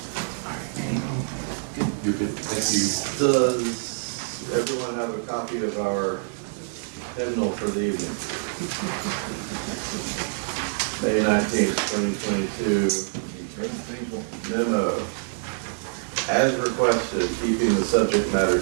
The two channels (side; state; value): left; silent; 61 dB below the other